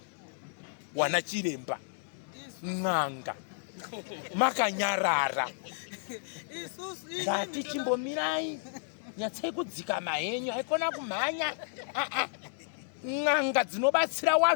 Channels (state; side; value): silent; right; digital silence